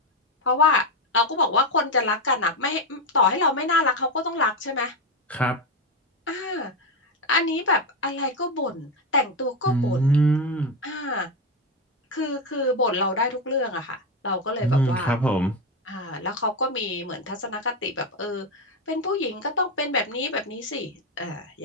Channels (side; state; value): both; normal; correlation 0.11